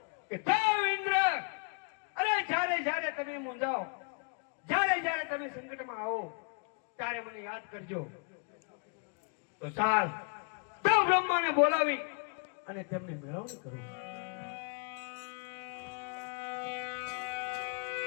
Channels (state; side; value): quieter; right; 38.1 dB